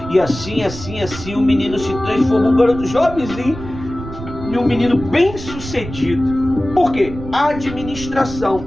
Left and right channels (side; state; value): right; noise; rumble, 11 dB below the sound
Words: E assim, o menino se transformou um garoto jovenzinho e um menino bem sucedido. Por quê? A administração.